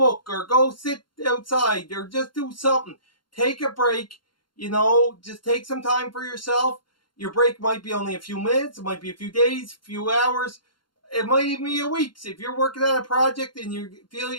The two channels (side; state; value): right; late; 0.72 ms